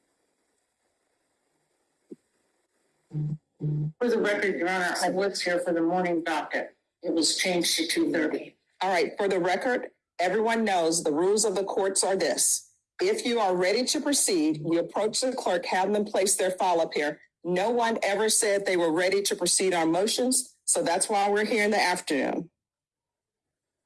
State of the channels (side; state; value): both; identical; correlation 1.00